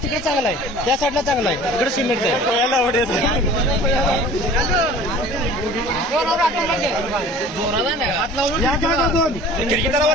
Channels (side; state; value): both; normal; correlation 0.45